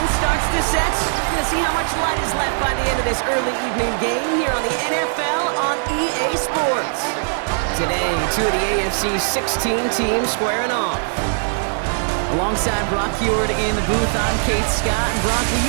starts to set. We're going to see how much light is left by the end of this early evening game here on the NFL on EA Sports. Today, two of the AFC's 16 teams squaring off. Alongside Brock Heward in the booth, I'm Kate Scott. And Brock, we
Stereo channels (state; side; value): silent; left; 60 dB below the other